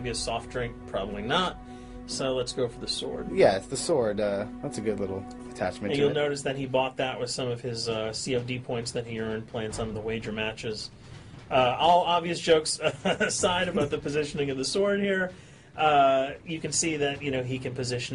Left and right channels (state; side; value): identical; both; correlation 1.00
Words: a soft drink, probably not. So let's go for the sword. Yeah, it's the sword. That's a good little attachment. And you'll notice that he bought that with some of his COD points that he earned playing some of the wager matches. All obvious jokes aside about the positioning of the sword here, you can see that he can position